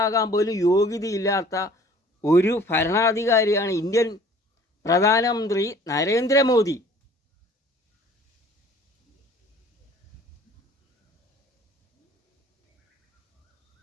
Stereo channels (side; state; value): both; normal; correlation 0.51